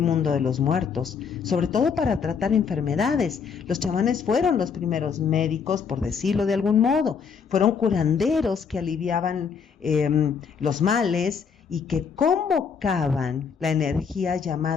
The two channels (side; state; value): right; quieter; 6.3 dB